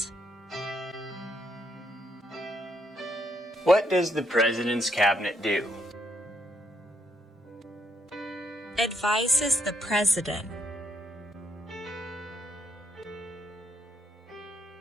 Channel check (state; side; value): normal; both; correlation 0.74